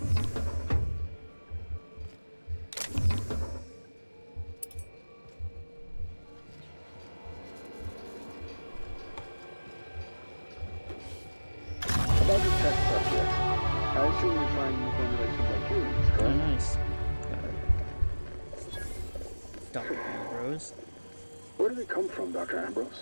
About the test subjects, I assume you find new formulations like humans, Oh, correct? nice. Got it. Dr. Ambrose. Where do they come from, Dr.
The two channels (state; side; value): inverted; both; correlation -1.00